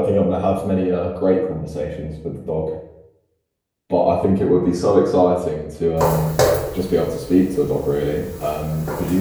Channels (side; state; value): both; identical; correlation 1.00